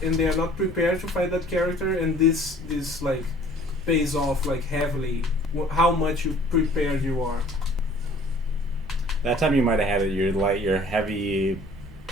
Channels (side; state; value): both; normal; correlation 0.53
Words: and they are not prepared to fight that character, and this like pays off like heavily how much you prepared you are. That time you might have had it. Your heavy